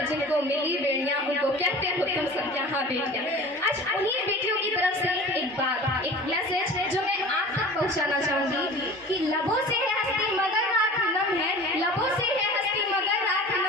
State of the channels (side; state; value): both; normal; correlation 0.40